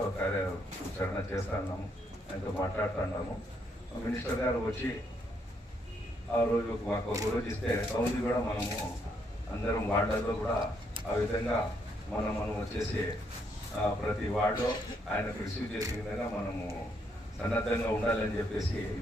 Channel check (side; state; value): both; normal; correlation 0.74